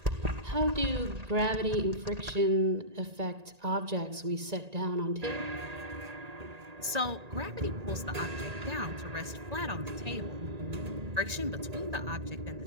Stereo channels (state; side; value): late; left; 1.9 ms